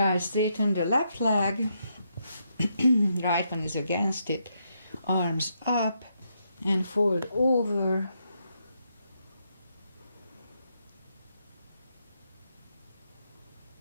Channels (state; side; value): inverted; both; correlation -0.79